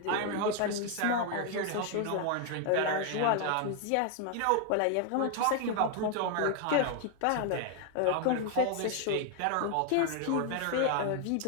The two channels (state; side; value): different; both; correlation 0.00